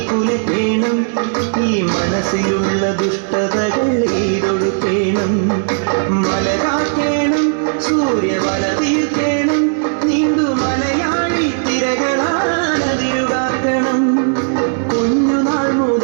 കുലയ്ക്കേണം. ഈ മനസ്സിലുള്ള ദുഷ്ടതകൾ എയ്തൊടുക്കേണം. മലകാക്കേണം, സൂര്യവല തീർക്കേണം. നീന്തു മലയാളി തിരകളാനതിരുടാക്കണം. കുഞ്ഞുനാൾ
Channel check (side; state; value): left; silent; digital silence